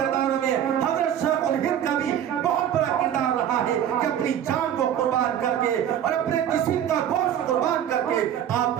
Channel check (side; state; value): left; quieter; 10.0 dB